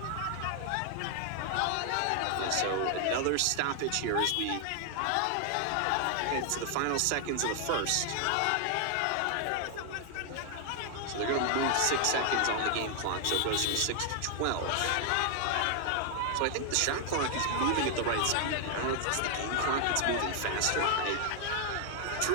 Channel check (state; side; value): different; both; correlation 0.00